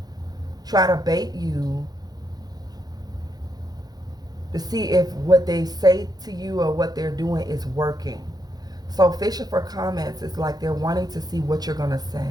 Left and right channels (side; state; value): left; late; 0.19 ms